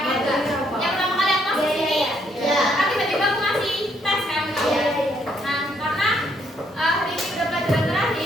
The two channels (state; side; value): normal; both; correlation 0.71